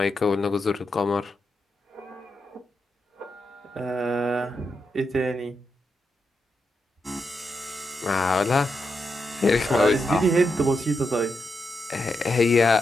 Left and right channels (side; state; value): both; normal; correlation 0.84